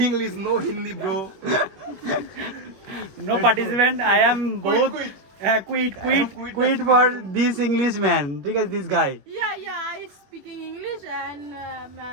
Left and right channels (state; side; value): late; left; 21 ms